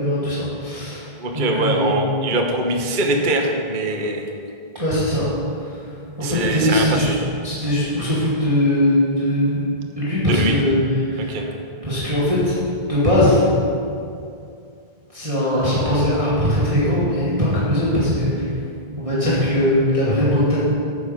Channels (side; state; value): left; late; 2.3 ms